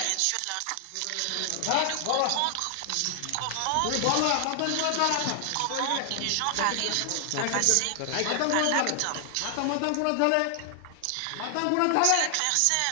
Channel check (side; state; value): both; different; correlation 0.00